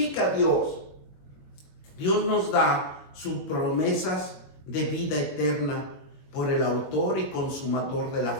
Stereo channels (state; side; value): late; right; 22 ms